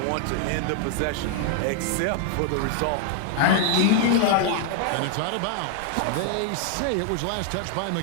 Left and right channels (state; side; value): different; both; correlation 0.00